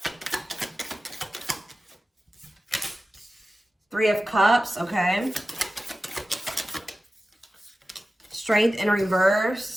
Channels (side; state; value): both; normal; correlation 0.95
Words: Three of Cups, okay. Strength in